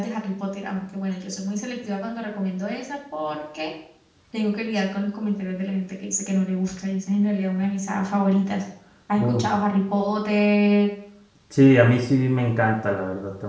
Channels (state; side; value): identical; both; correlation 1.00